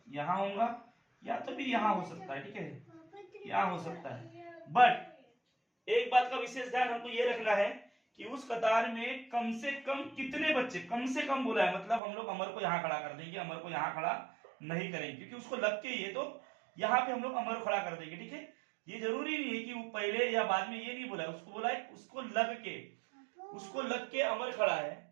यहाँ होगा, या तो भी यहाँ हो सकता है, ठीक है, यहाँ हो सकता है। बट एक बात का विशेष ध्यान हमको ये रखना है कि उस कतार में कम से कम कितने बच्चे, कम से कम बोला है, मतलब हम लोग अमर को यहाँ खड़ा कर देंगे, अमर को यहाँ खड़ा नहीं करेंगे क्योंकि उसको लग के ही है, तो यहाँ पे हम लोग अमर खड़ा कर देंगे। ठीक है, ये जरूरी नहीं है कि वो पहले या बाद में, ये नहीं बोला है, उसको बोला है उसको लग के अमर खड़ा है।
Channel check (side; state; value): left; drops out; at 12.0 s